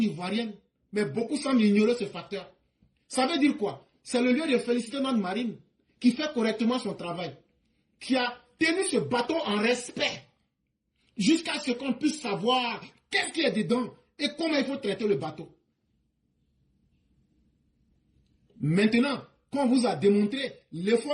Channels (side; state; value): both; identical; correlation 1.00